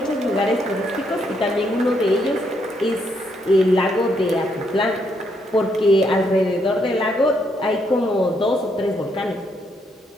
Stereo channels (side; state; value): both; normal; correlation 0.75